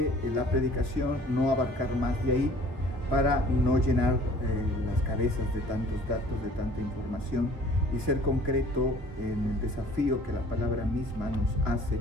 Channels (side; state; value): left; late; 3.2 ms